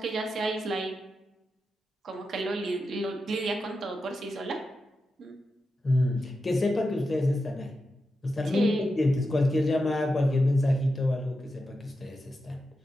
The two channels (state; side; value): normal; both; correlation 0.89